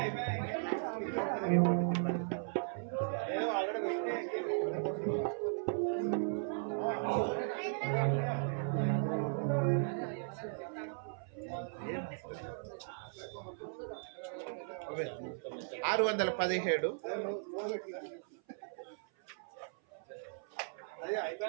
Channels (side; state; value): left; silent; 53 dB below the other